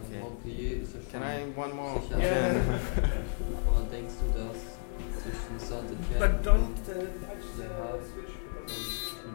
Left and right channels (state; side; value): silent; right; digital silence